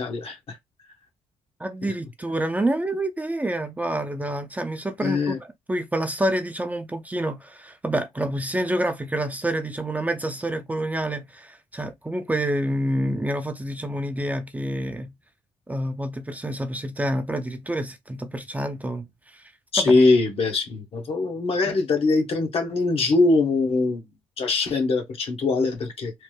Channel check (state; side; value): normal; both; correlation 0.80